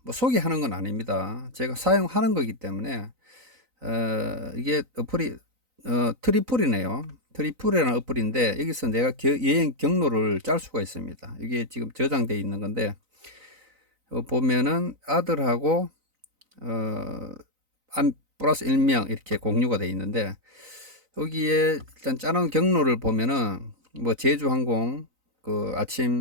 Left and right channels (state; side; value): late; left; 3.9 ms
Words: 뭐 소개하는 건 아닙니다. 제가 사용하는 거기 때문에, 이게 어플이, 트리플이네요. 트리플이라는 어플인데, 여기서 내가 여행 경로를 짤 수가 있습니다. 이게 지금 저장되어 있는 건데, 보면은 아들하고, 플러스 1명 이렇게 공유가 되어 있는데, 여기에 일단 짜놓은 경로를 보면은, 뭐 제주항공, 그